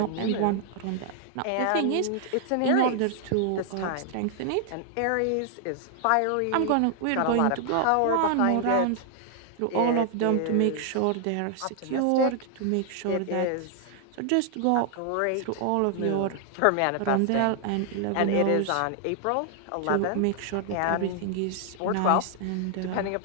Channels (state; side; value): different; both; correlation 0.00